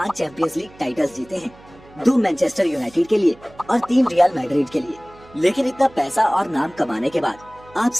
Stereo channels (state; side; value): noise; right; hum, 24 dB below the sound